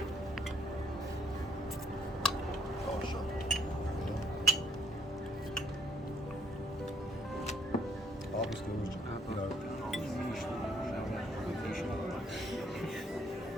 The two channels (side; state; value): both; normal; correlation 0.69